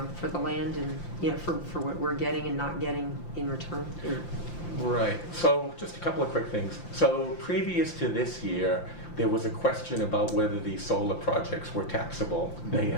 for the land and, for what we're getting and not getting in return? Right. So just a couple of quick things. So previous to this year, there was a question about whether these solar projects were taxable. They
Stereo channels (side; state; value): right; late; 5.8 ms